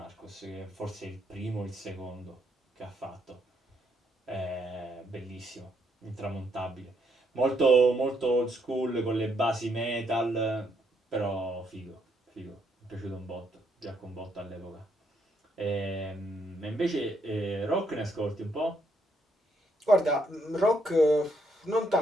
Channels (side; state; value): both; normal; correlation 0.74